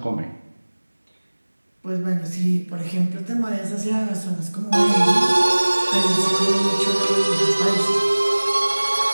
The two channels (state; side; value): inverted; both; correlation -1.00